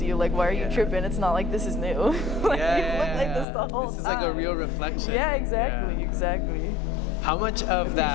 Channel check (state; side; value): drops out; right; at 3.5 s